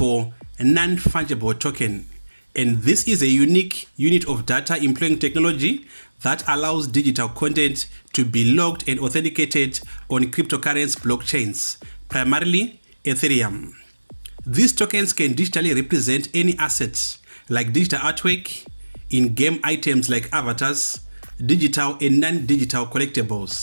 non-fungible token, and this is a unique unit of data employing technology that allows digital content to be logged and authenticated on cryptocurrency blockchains, primarily Ethereum. These tokens can digitally represent any assets like digital artwork, in-game items like avatars, digital and non-digital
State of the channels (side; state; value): both; inverted; correlation -1.00